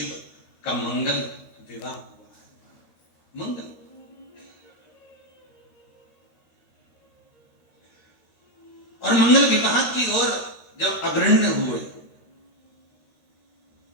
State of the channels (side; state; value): right; late; 13 ms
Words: का मंगल विवाह हुआ है। मंगल, और मंगल विवाह की ओर जब अग्रण्य हुए,